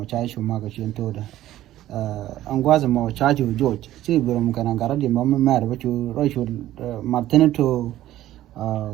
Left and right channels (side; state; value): left; quieter; 13.9 dB